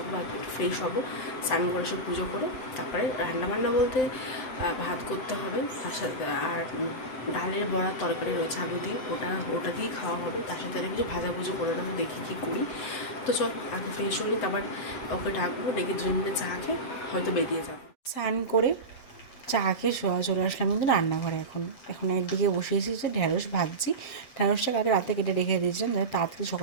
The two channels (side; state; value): right; late; 7.8 ms